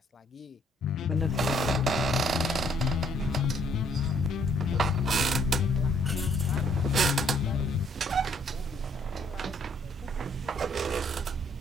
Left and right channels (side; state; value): both; normal; correlation 0.66